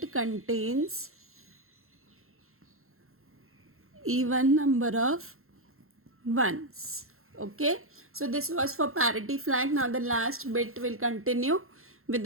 contains even number of ones. Okay, so this was for parity flag. Now the last bit will continue with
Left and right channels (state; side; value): late; left; 0.62 ms